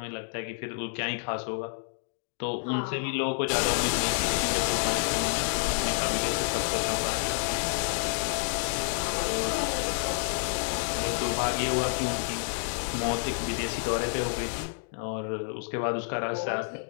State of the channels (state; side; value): silent; right; digital silence